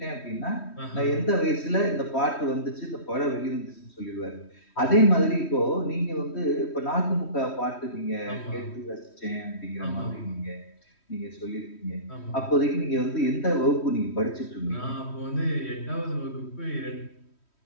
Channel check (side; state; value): right; late; 3.1 ms